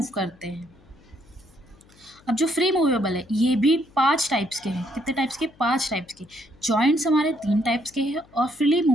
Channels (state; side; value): noise; left; hum, 28 dB below the sound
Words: करते हैं। अब जो फ्री मूवेबल है ये भी 5 टाइप्स के हैं। कितने टाइप्स के? 5 टाइप्स के। जॉइंट्स हमारे 3 टाइप्स के हैं और फ्रीली